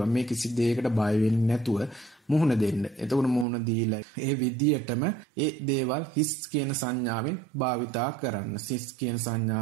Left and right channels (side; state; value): left; drops out; at 3.5 s